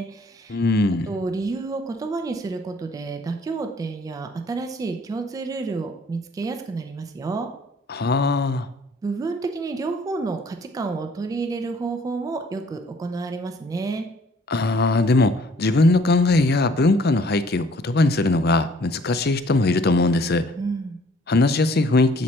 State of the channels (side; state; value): both; normal; correlation 0.58